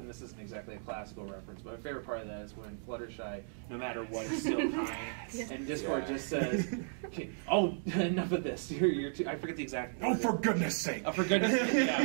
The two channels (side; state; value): left; silent; digital silence